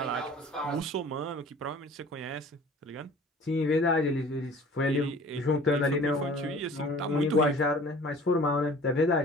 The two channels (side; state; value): both; normal; correlation 0.47